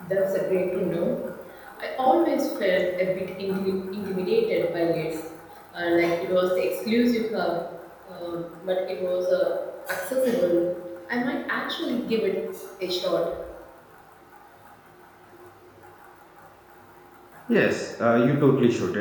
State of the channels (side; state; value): both; identical; correlation 1.00